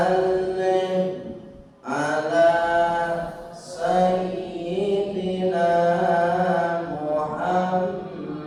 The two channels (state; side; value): identical; both; correlation 1.00